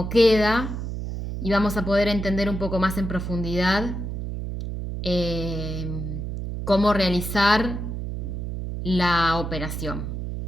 queda, y vamos a poder entender un poco más en profundidad cómo realizar la operación.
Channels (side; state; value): right; noise; hum, 5 dB below the sound